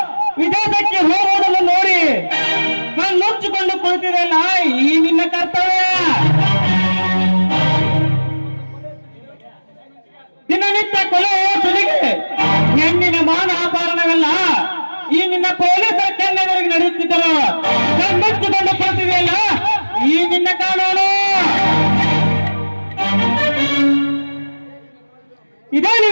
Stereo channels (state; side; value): inverted; both; correlation -1.00